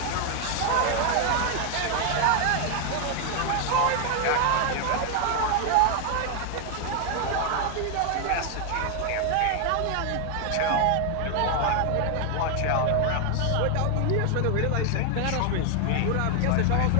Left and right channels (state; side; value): different; both; correlation 0.01